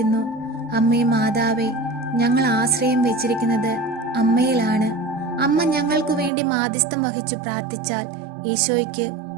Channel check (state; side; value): drops out; left; at 6.3 s